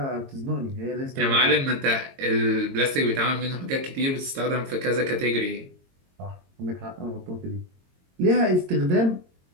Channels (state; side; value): late; left; 22 ms